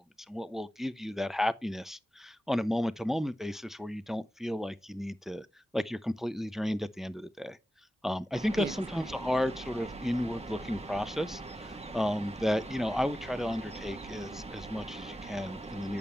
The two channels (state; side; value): normal; both; correlation 0.93